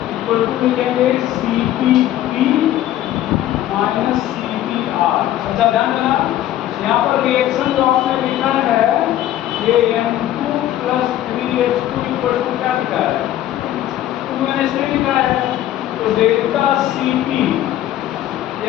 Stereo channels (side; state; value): right; quieter; 13.0 dB